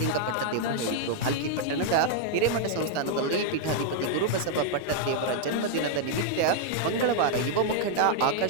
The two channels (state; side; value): different; both; correlation -0.01